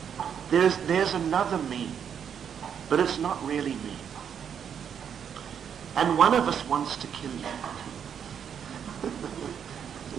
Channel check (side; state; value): left; quieter; 8.0 dB